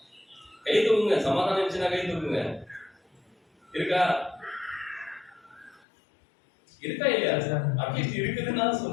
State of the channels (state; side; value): drops out; right; at 5.8 s